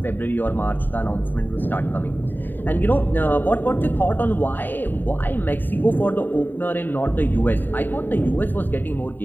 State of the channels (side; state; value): right; late; 0.091 ms